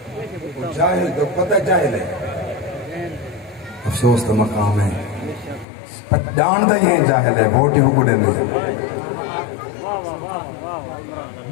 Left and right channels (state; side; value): drops out; right; at 5.7 s